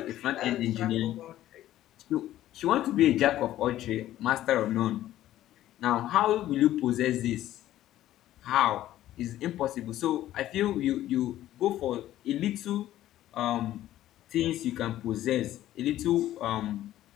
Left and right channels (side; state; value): right; quieter; 13.6 dB